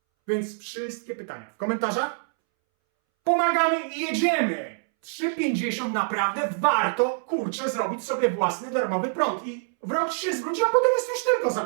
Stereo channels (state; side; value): silent; left; 61 dB below the other